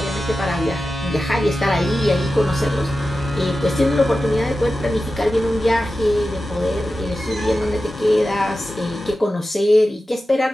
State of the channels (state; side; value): normal; both; correlation 0.93